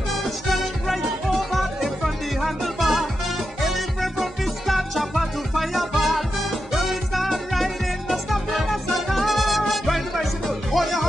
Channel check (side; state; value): both; normal; correlation 0.88